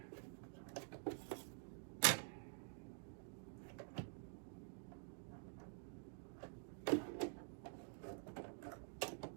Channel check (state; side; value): silent; left; digital silence